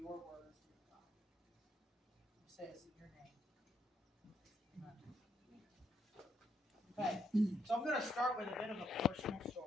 your words, dear God. We say this in your name. Amen. Okay, so I'm going to start with a bit of a personal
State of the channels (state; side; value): normal; both; correlation 0.75